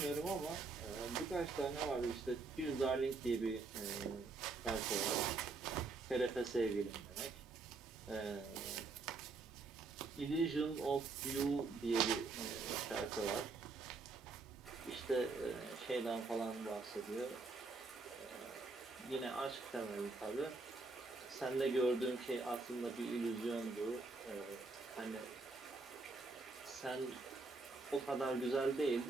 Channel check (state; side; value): quieter; left; 3.9 dB